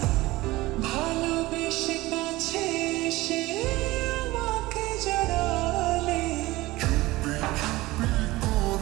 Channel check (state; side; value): quieter; left; 19.2 dB